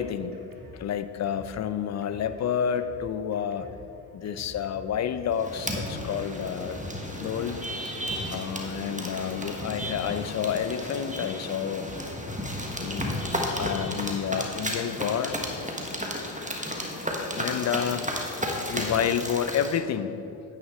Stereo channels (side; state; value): right; quieter; 5.0 dB